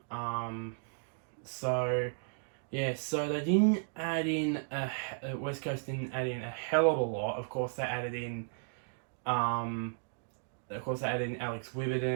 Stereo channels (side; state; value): left; silent; digital silence